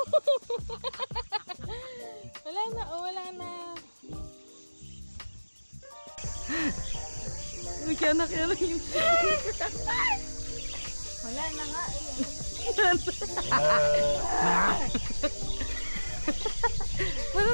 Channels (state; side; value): inverted; both; correlation -1.00